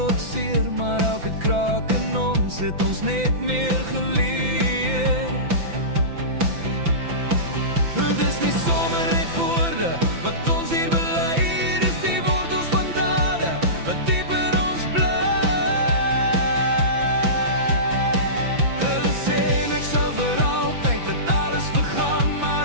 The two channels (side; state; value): left; late; 5.9 ms